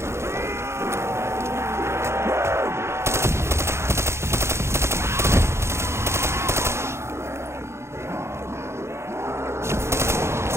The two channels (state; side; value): late; left; 0.13 ms